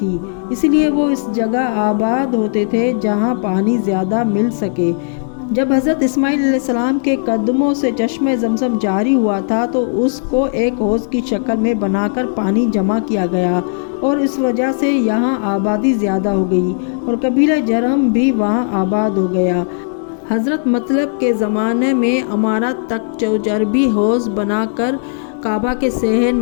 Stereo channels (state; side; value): silent; right; digital silence